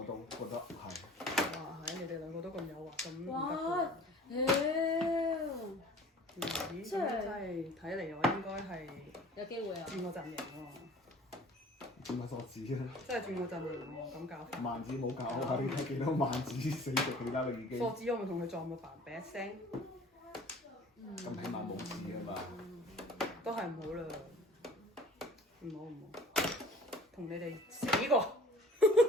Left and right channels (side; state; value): both; normal; correlation 0.47